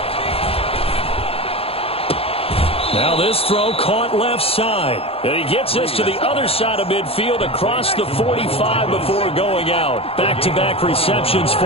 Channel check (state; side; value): late; right; 0.28 ms